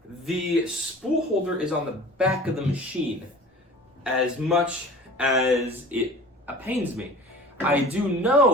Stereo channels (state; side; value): normal; both; correlation 0.42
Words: The spool holder is on the back of the machine, as much as it pains me. I do